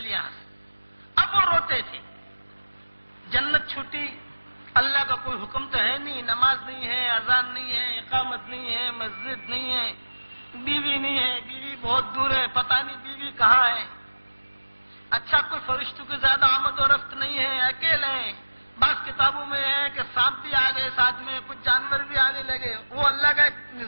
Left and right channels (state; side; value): inverted; both; correlation -1.00